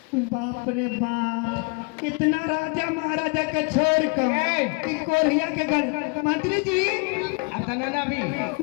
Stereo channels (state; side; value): quieter; right; 32.9 dB